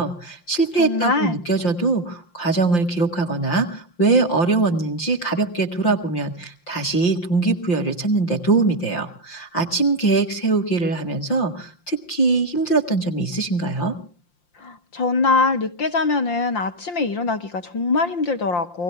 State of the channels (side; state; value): right; late; 5.7 ms